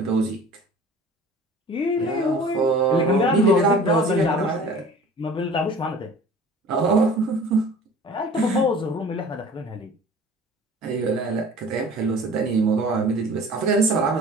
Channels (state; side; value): normal; both; correlation 0.44